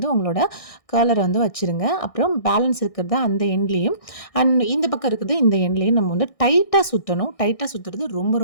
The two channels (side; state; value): right; late; 1.6 ms